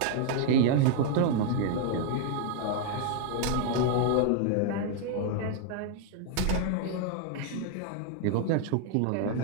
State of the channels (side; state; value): both; different; correlation 0.00